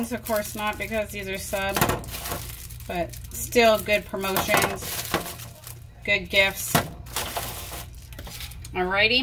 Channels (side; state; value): both; identical; correlation 1.00